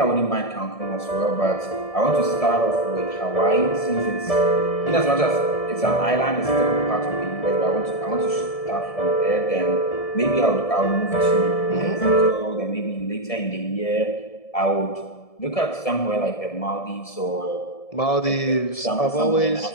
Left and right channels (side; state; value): right; late; 1.7 ms